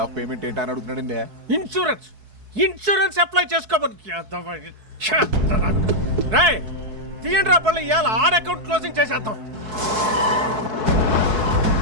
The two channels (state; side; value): late; left; 4.6 ms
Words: ఆఫ్ పేమెంట్ ఏంటని అడుగుతున్నాడండి. ఇన్సూరెన్స్ అప్లై చేసుకోమని రాయ్ తీయండి రా పళ్ళు ఇవాళ ఆర్ అకౌంట్ క్లోజింగ్ చేసేద్దాం.